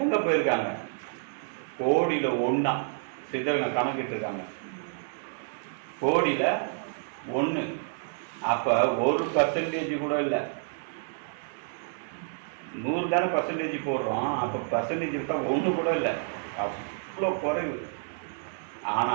எங்க போயிருக்காங்க? கோடியில 1 சித்தருங்க கணக்கிட்டு இருக்காங்க. கோடியில 1. அப்ப 1% கூட இல்லை. 100 தானே பர்சன்டேஜ் போடுறோம். அப்ப பர்சன்டேஜ் இருக்கா 1 கூட இல்லை, அவ்வளோ குறைவு. ஆனா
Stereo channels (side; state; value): left; silent; digital silence